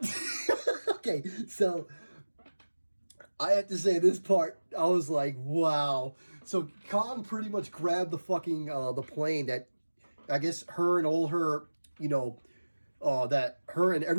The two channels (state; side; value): inverted; both; correlation -1.00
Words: okay, so I have to say this part, I was like, wow. So Kong pretty much grabbed the fucking the plane that I guess her and all her, you know, that her and